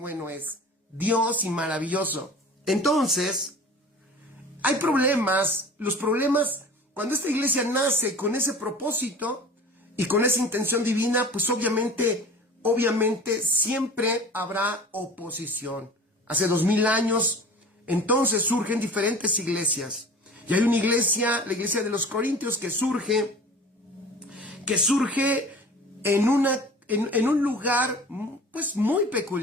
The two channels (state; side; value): normal; both; correlation 0.41